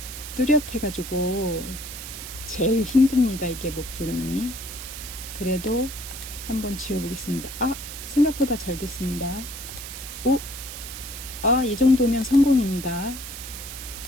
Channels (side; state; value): right; noise; hiss, 10 dB below the sound